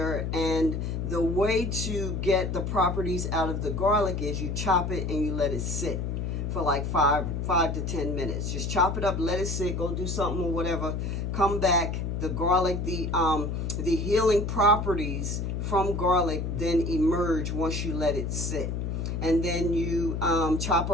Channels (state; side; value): noise; left; hum, 2 dB below the sound